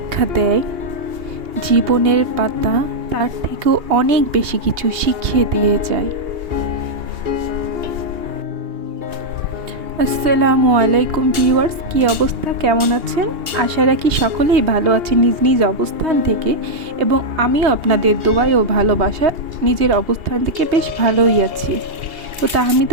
দেয়, জীবনের পাতা তার থেকেও অনেক বেশি কিছু শিখিয়ে দিয়ে যায়। আসসালামু আলাইকুম ভিউয়ার্স, কী অবস্থা, কেমন আছেন? আশা রাখি সকলেই ভালো আছেন নিজ নিজ অবস্থান থেকে, এবং আমিও আপনাদের দোয়ায় ও ভালোবাসা নিজের অবস্থান থেকে বেশ ভালোই আছি। তো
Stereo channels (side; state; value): left; late; 2.8 ms